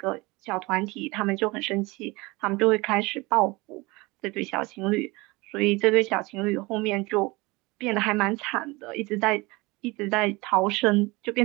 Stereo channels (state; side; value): quieter; left; 23.6 dB